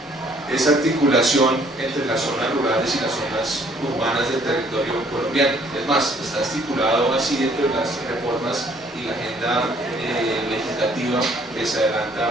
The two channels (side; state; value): both; normal; correlation 0.61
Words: articulación entre las zonas rurales y las zonas urbanas del territorio colombiano. Es más, está estipulado así dentro de las reformas y la agenda legislativa que se